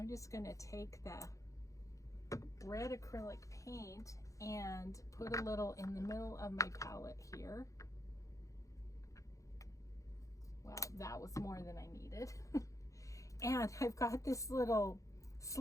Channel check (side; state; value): right; late; 0.16 ms